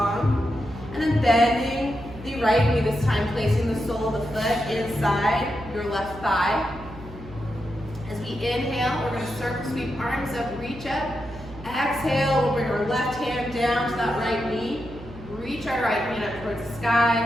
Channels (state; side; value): noise; right; hum, 16 dB below the sound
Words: And then bending the right knee this time, placing the sole of the foot inside your left thigh. As we inhale, we're going to circle sweep arms up, reach up. Exhale, we'll bring our left hand down to that right knee. Reach our right hand up towards the